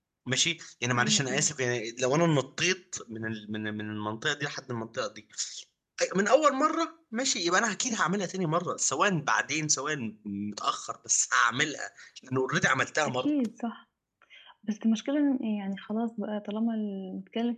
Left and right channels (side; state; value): both; identical; correlation 1.00